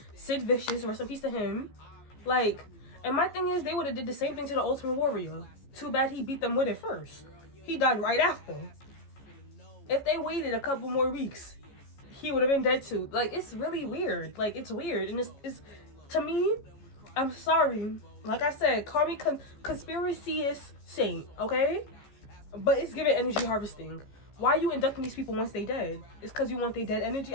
Sid Vicious, rest in peace to him. Like, and my thing is, they would have did the same thing to the Ultimate Warrior. Too bad he beat them with it first. He died right after. If they waited a couple more weeks, he would have been dead too. Like, it's really weird. Like, it's weird. And it's to me, I'm sorry. Like I said, call me conspiracy-ist saint, okay? But it's giving energy harvesting. Why are you inducting these people once they dead? It's because you want their dead energy?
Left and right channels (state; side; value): late; right; 14 ms